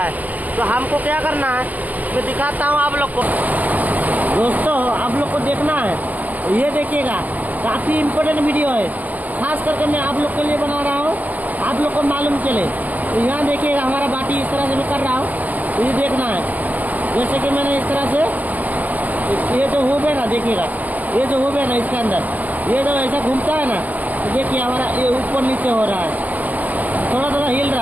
तो हमको क्या करना है मैं दिखाता हूँ आप लोग को। दोस्तों आप लोग को देखना है, ये देखिएगा काफ़ी इम्पोर्टेंट वीडियो है, खास करके मैं आप लोग के लिए बना रहा हूँ, आप लोग को मालूम चले। तो यहाँ देखिएगा हमारा बाटी इस तरह से मैं कर रहा हूँ, तो ये देखना है जैसे कि मैंने इस तरह से ये जो होबे ना देखिएगा, ये जो होबे ना इसके अंदर ये जो ऐसा घूमता है ना, तो देखिए हमारा ये ऊपर नीचे हो रहा है, थोड़ा थोड़ा हिल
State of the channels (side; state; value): left; late; 0.081 ms